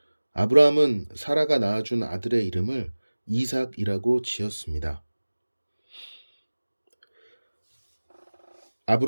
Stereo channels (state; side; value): inverted; both; correlation -1.00